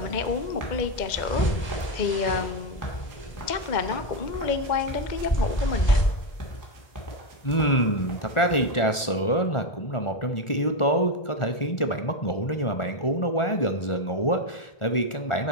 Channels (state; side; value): late; right; 1.4 ms